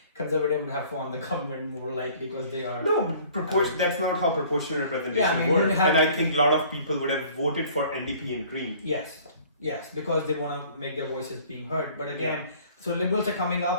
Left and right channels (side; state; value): both; inverted; correlation -0.52